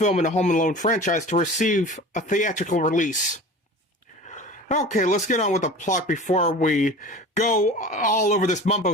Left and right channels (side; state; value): both; normal; correlation 0.38